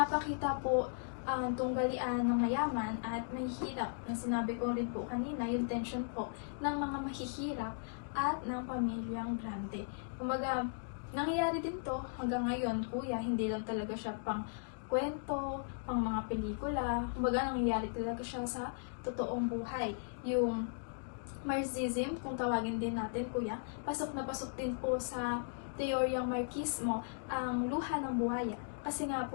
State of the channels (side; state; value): right; silent; digital silence